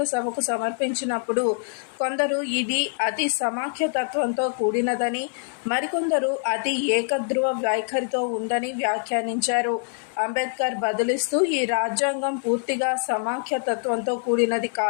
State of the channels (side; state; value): right; silent; 62 dB below the other